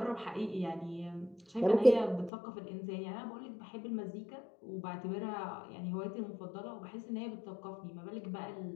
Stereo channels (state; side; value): drops out; right; at 2.3 s